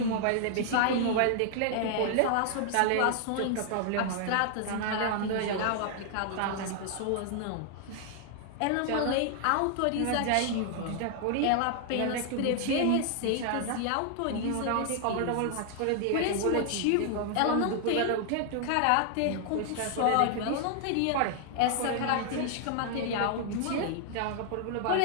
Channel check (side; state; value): both; different; correlation 0.00